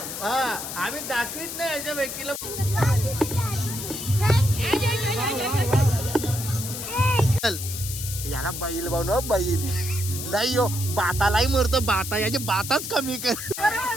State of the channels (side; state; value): left; noise; hiss, 7 dB below the sound